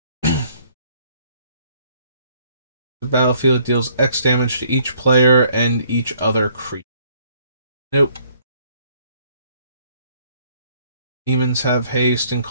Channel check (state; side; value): inverted; both; correlation -0.62